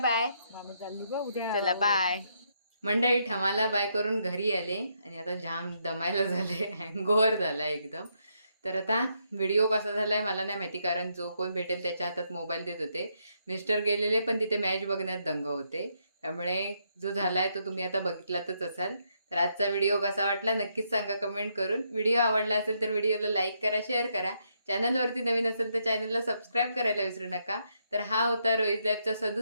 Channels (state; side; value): inverted; both; correlation -0.76